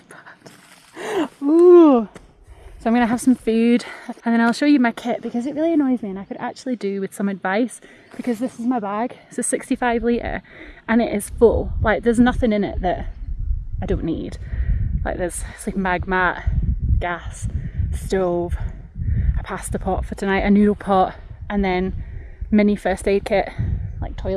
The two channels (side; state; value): both; identical; correlation 1.00